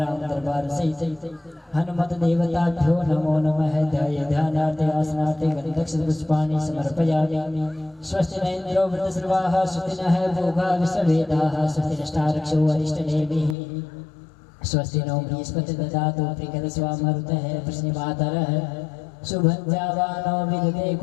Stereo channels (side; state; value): right; drops out; at 13.6 s